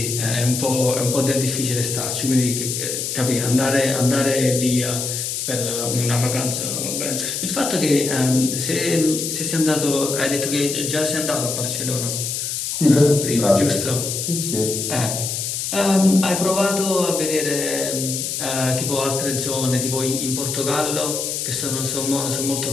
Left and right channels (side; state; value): left; noise; hiss, 3 dB below the sound